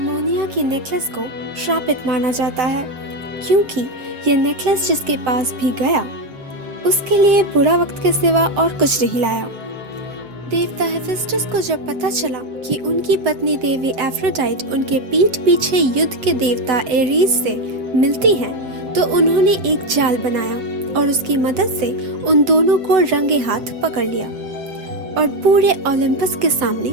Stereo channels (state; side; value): late; left; 7.6 ms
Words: की नेकलेस को श्रापित माना जाता है, क्योंकि ये नेकलेस जिसके पास भी गया उसके लिए बुरा वक्त के सिवा और कुछ नहीं लाया। देवता हेफेस्टस को जब पता चला कि उनकी पत्नी देवी एफ्रोडाइट उनके पीठ पीछे युद्ध के देवता एरीज से मिलती हैं, तो उन्होंने एक जाल बनाया और उसकी मदद से उन दोनों को रंगे हाथ पकड़ लिया और पूरे ओलंपस के सामने